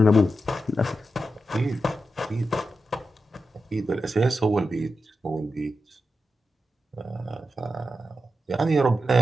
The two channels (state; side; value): normal; both; correlation 0.89